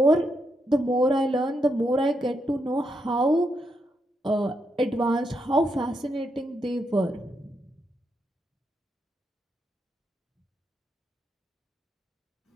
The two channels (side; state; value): both; normal; correlation 0.81